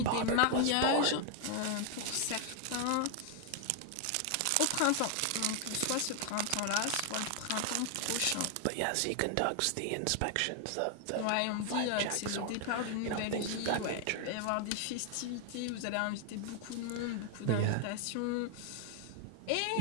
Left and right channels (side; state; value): both; different; correlation 0.00